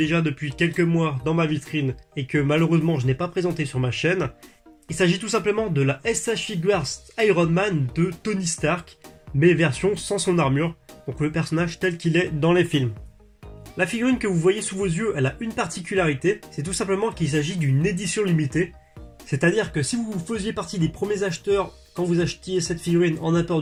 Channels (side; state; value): both; identical; correlation 1.00